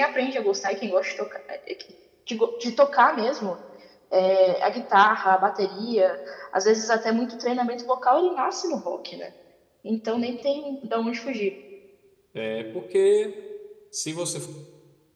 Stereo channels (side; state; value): both; identical; correlation 1.00